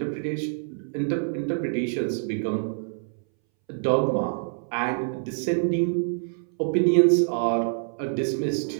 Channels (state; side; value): silent; left; 61 dB below the other